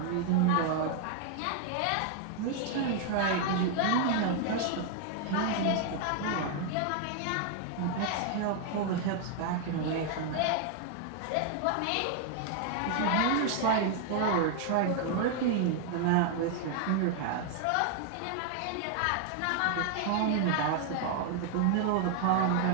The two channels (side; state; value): both; different; correlation 0.00